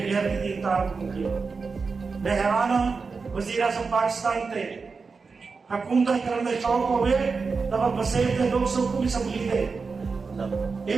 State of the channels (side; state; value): left; quieter; 4.7 dB